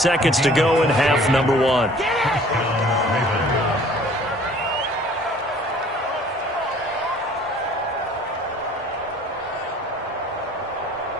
to go in half number 1.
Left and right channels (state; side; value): normal; both; correlation 0.52